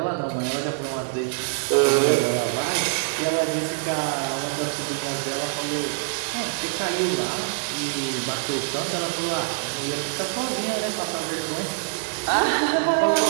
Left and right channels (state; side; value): silent; left; digital silence